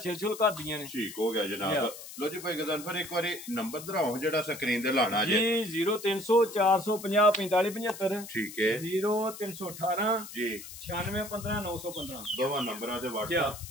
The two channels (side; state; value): left; noise; hiss, 13 dB below the sound